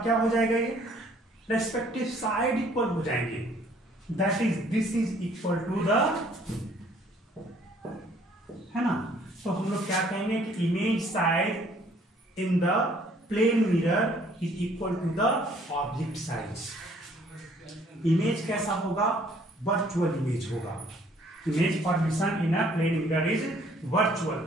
क्या हो जाएगा, ये रेस्पेक्टिव साइड इक्वल हो जाएंगे। That is this is equal to the, है ना। तो हम लोग क्या कहेंगे कि image side in the plane mirror is equal to the object size. Image कैसा होगा, वर्चुअल इमेज होगा। Image formation in a plane mirror is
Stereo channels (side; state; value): both; normal; correlation 0.60